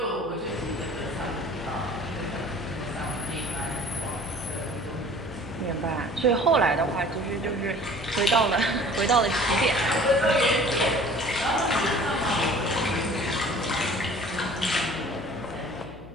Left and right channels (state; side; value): noise; left; hum, 18 dB below the sound